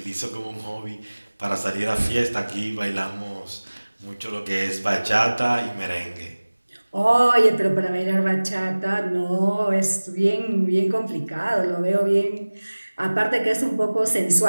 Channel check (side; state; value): both; inverted; correlation -1.00